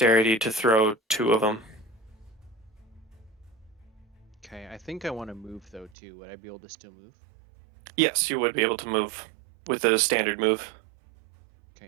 to throw 2 of them. Okay, I think I want to move though too. Would I be able to still move? Yes, you would be able to move with a standard move.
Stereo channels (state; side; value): drops out; left; at 5.9 s